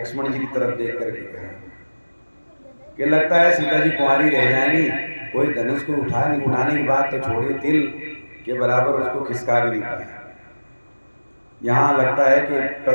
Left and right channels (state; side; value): inverted; both; correlation -1.00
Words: जी की तरफ देख करके कहा कि लगता है सीता जी कुंवारी रह जाएंगी, कोई धनुष को उठाने की बात तो छोड़िए, तिल के बराबर उसको खिसका भी नहीं पाया। यहाँ लगता है कि